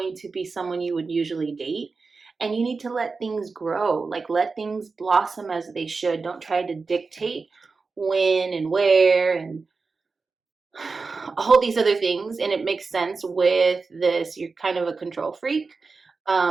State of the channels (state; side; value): quieter; left; 4.4 dB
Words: to be someone you would usually date. And you need to let things grow, like let things blossom as they should. Don't try to dictate when and where and all these other things. And it makes sense with this. You're kind of a control freak.